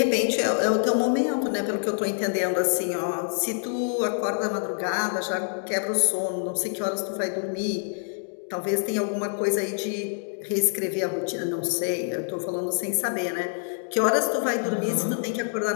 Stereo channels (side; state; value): right; silent; 61 dB below the other